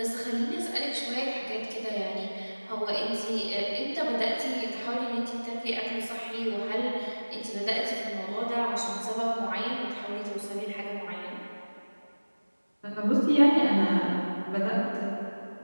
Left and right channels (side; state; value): both; inverted; correlation -1.00